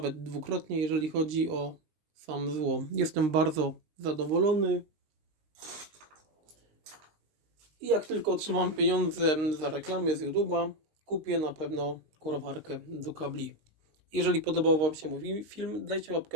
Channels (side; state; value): left; late; 19 ms